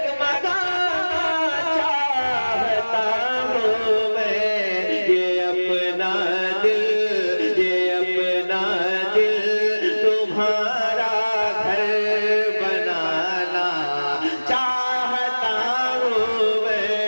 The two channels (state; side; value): inverted; both; correlation -1.00